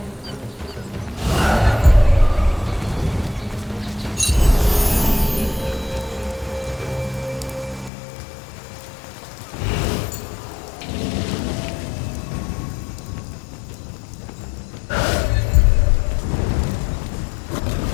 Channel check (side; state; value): right; drops out; at 7.9 s